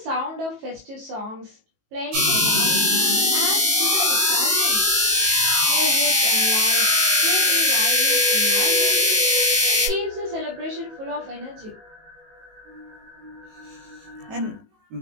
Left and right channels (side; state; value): left; late; 19 ms